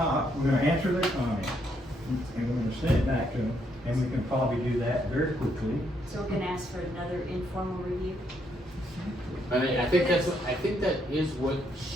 we're gonna answer their comments, and we're gonna send it back to them, and we can probably do that very quickly. So we're gonna ask for another informal review? I mean, I think that is what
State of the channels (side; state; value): both; normal; correlation 0.74